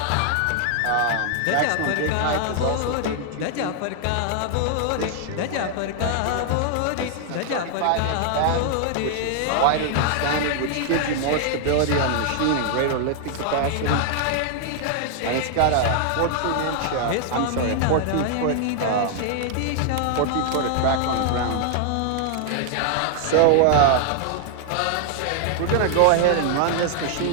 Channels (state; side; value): different; both; correlation 0.00